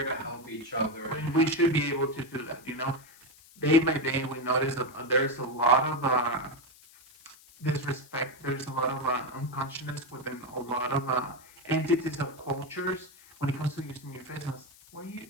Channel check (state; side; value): noise; left; hiss, 24 dB below the sound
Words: to help each other. And we should be able to do that. Day by day, we notice that there's a lot of disrespect. There's a lot of unconsciousness within a lot of entities of cultures when it comes to using your face mask. Wear